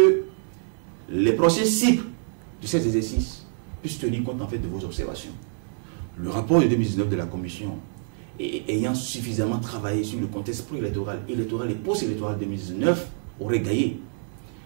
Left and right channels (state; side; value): silent; left; digital silence